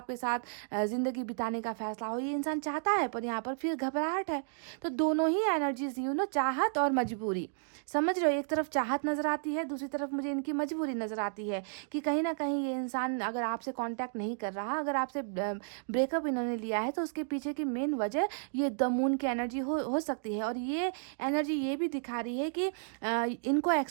साथ जिंदगी बिताने का फैसला हो, ये इंसान चाहता है, पर यहाँ पर फिर घबराहट है। तो दोनों ही एनर्जीज चाहत और मजबूरी, समझ रहे हो, एक तरफ चाहत नजर आती है, दूसरी तरफ मुझे इनकी मजबूरी नजर आती है कि कहीं ना कहीं ये इंसान अगर आपसे कांटेक्ट नहीं कर रहा, अगर आपसे ब्रेकअप इन्होंने लिया है, तो उसके पीछे की मेन वजह ये द मून की एनर्जी हो सकती है। और ये एनर्जी ये भी दिखा रही है कि इनको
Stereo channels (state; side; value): silent; left; digital silence